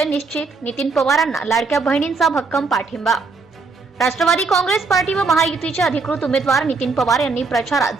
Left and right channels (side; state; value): left; quieter; 4.2 dB